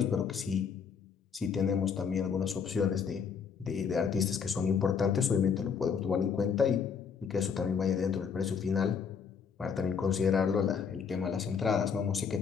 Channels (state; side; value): quieter; right; 6.4 dB